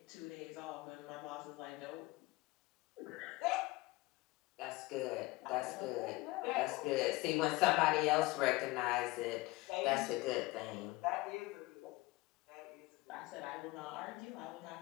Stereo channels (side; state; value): right; quieter; 21.1 dB